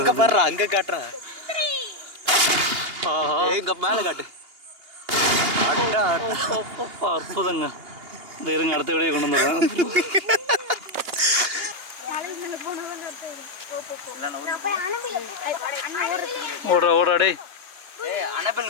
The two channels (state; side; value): late; left; 2.8 ms